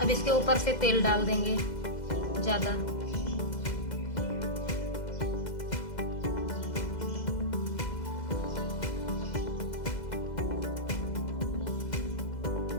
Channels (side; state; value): right; late; 2.0 ms